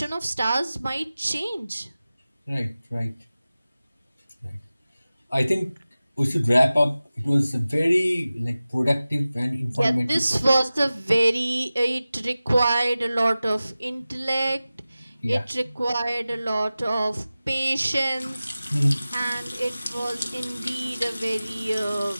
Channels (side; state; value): both; inverted; correlation -0.96